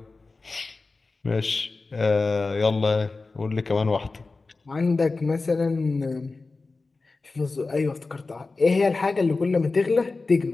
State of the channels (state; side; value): quieter; right; 3.7 dB